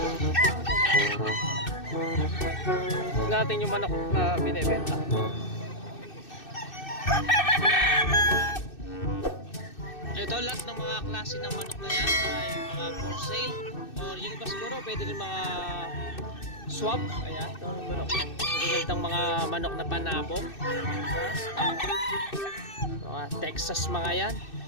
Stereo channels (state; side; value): late; right; 2.6 ms